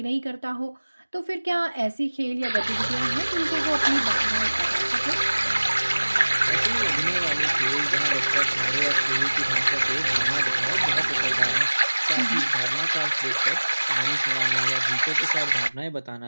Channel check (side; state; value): both; inverted; correlation -1.00